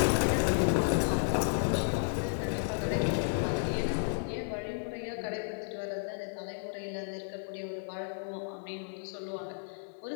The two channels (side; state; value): right; silent; 56 dB below the other